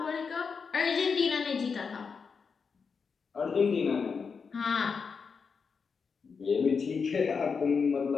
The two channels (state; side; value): quieter; right; 5.5 dB